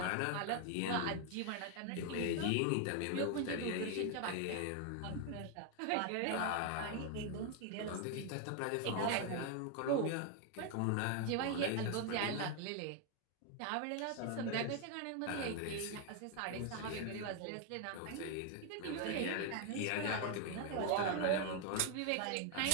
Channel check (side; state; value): both; different; correlation 0.01